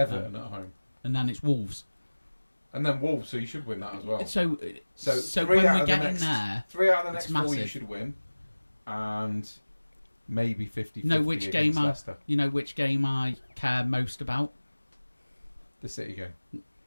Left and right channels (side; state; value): both; inverted; correlation -1.00